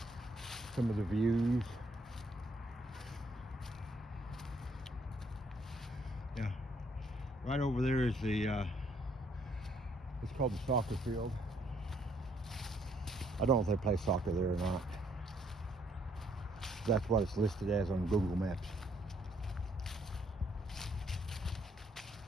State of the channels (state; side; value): normal; both; correlation 0.69